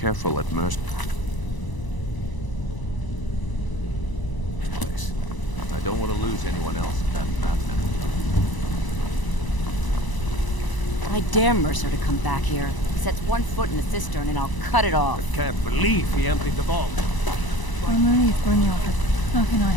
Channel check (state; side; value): late; right; 1.0 ms